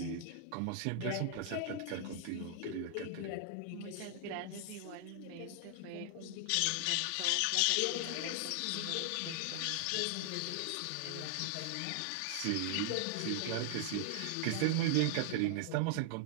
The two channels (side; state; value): both; different; correlation 0.00